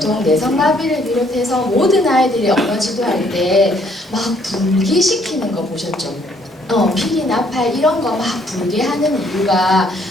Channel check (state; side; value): normal; both; correlation 0.66